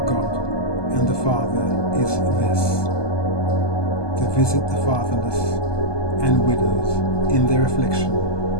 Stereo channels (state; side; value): late; right; 1.2 ms